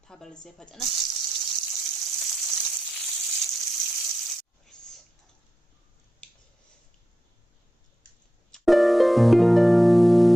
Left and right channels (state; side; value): normal; both; correlation 0.89